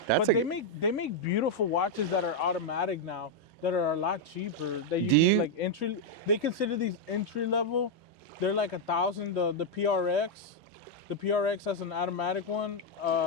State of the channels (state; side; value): normal; both; correlation -0.01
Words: That's But they make beautiful watches that are automatic now that are a lot cheaper. That you can like entry. They consider these entry level. They're like 1,000. The PRX. The PRX has an automatic one.